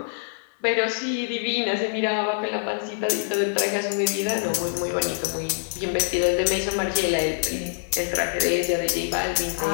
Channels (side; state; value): right; silent; 58 dB below the other